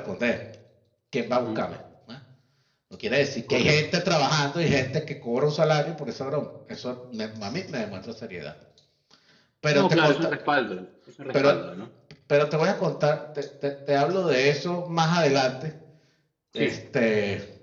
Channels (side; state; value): both; identical; correlation 1.00